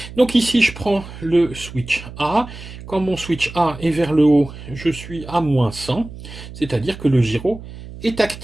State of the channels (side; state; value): right; noise; hum, 14 dB below the sound